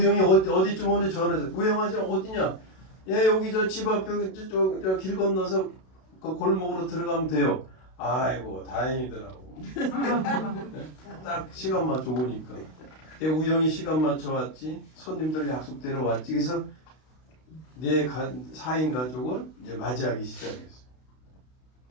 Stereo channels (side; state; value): right; late; 32 ms